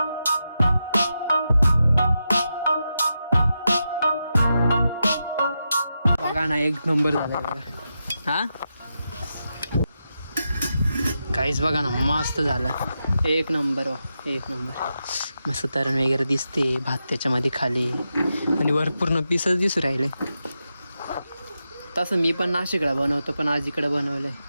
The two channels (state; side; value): inverted; both; correlation -0.88